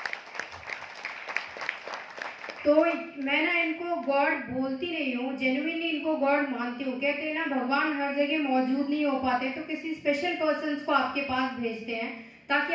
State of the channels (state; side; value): identical; both; correlation 1.00